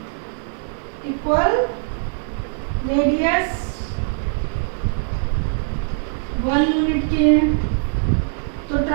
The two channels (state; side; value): silent; left; digital silence